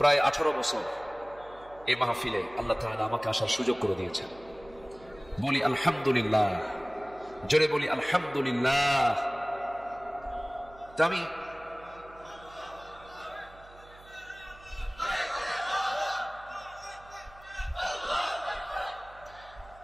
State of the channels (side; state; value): right; noise; hum, 22 dB below the sound